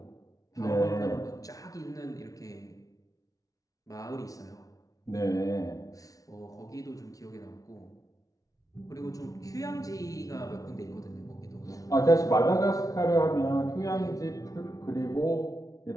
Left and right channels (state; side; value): late; right; 0.17 ms